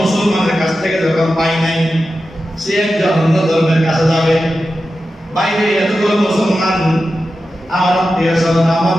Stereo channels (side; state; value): both; normal; correlation 0.92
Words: কাছ থেকে যখন পাই নাই, সে একজন অন্য ধর্মের কাছে যাবে। বাইরে এতগুলো মুসলমান আমার আত্মীয় স্বজন, আমার